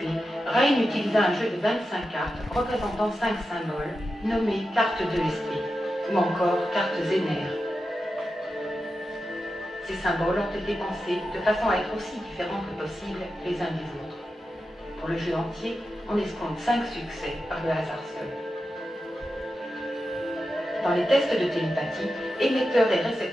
Ryan utilisa un jeu de 25 cartes représentant 5 symboles nommés cartes d'ESP ou encore cartes Zener. Ces symboles ont été pensés de façon à être aussi différents que possible les uns des autres. Pour le jeu entier, on escompte 5 succès par le hasard seul. Dans les tests de télépathie, émetteurs et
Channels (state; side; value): normal; both; correlation 0.90